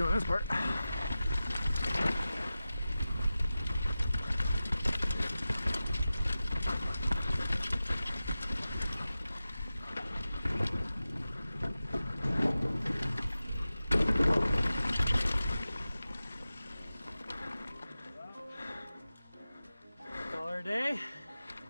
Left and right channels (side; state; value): both; inverted; correlation -0.95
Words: this part. Call her a day.